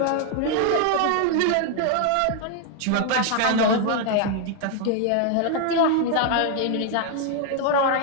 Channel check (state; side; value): different; both; correlation 0.00